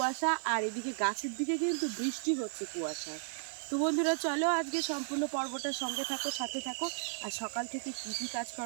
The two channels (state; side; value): silent; left; digital silence